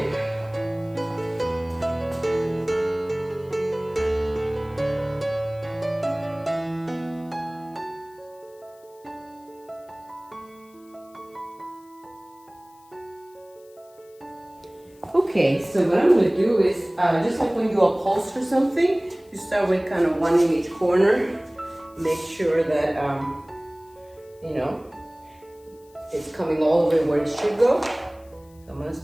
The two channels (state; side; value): noise; left; hiss, 30 dB below the sound